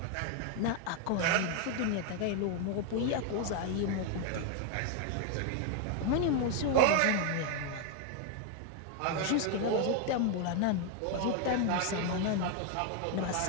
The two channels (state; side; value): different; both; correlation 0.01